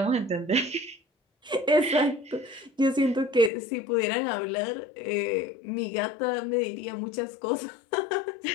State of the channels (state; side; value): drops out; right; at 3.5 s